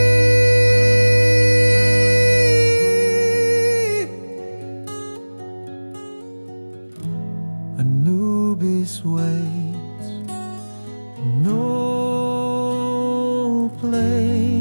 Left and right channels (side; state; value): both; inverted; correlation -1.00